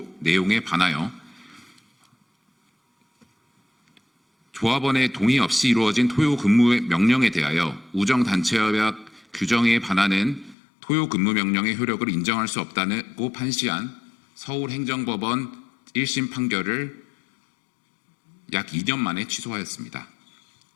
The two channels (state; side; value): drops out; right; at 10.6 s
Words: 내용에 반하여 조합원의 동의 없이 이루어진 토요 근무 명령에 대하여 우정단체협약 규정에 반하는 토요 근무 명령의 효력을 인정할 수 없다고 판시한 서울행정법원 1심 판결을 약 2년 만에 취소하였습니다.